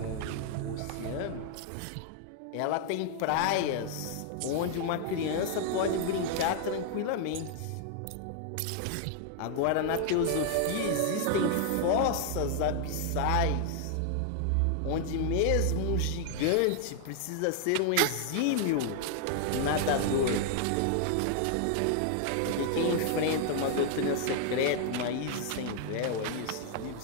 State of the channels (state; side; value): different; both; correlation 0.00